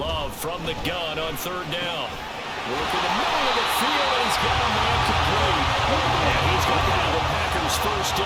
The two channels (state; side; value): identical; both; correlation 1.00